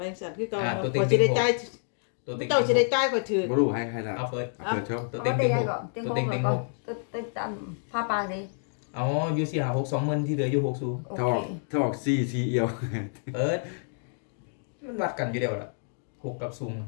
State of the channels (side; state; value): right; silent; digital silence